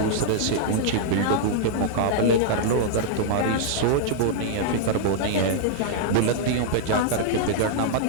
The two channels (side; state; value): both; different; correlation -0.02